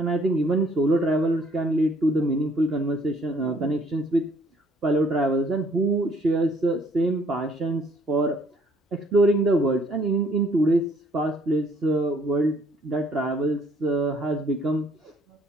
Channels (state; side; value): normal; both; correlation 0.63